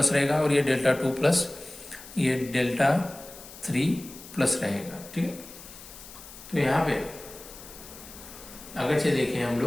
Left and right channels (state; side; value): noise; left; hiss, 16 dB below the sound